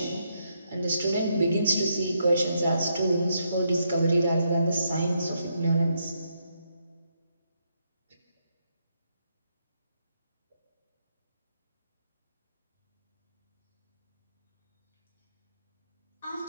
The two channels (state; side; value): inverted; both; correlation -0.78